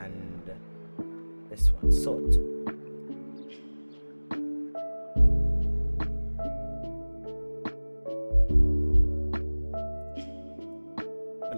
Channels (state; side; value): inverted; both; correlation -1.00